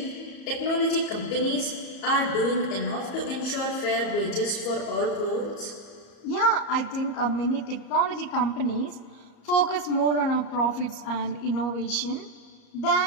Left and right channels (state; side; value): late; right; 34 ms